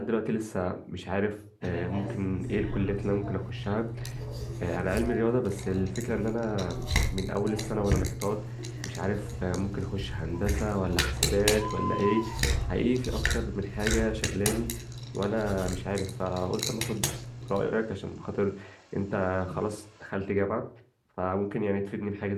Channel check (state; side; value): identical; both; correlation 1.00